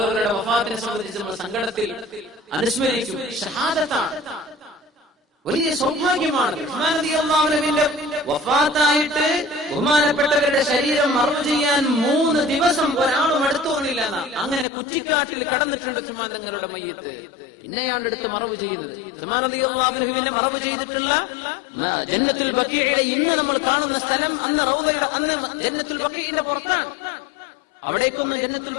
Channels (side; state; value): right; drops out; at 14.7 s